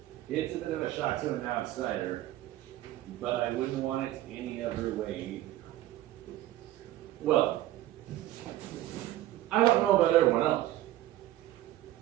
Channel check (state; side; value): quieter; left; 14.7 dB